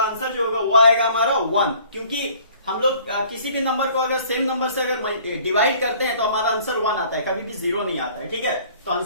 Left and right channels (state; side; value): inverted; both; correlation -0.54